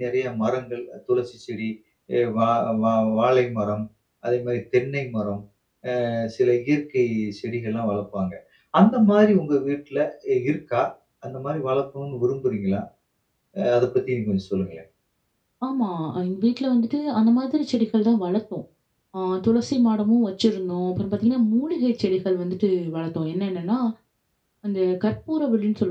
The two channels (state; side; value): identical; both; correlation 1.00